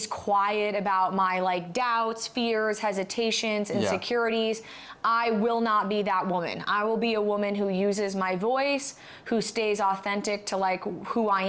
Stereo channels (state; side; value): identical; both; correlation 1.00